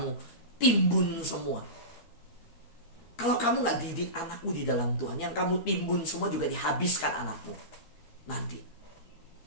timbun semua? Kalau kamu gak didik anakmu di dalam Tuhan, yang kamu timbun semua juga dihabiskan anakmu nanti.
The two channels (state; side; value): late; right; 13 ms